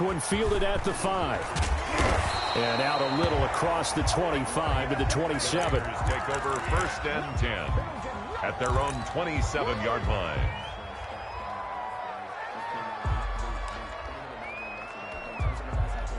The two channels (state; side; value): identical; both; correlation 1.00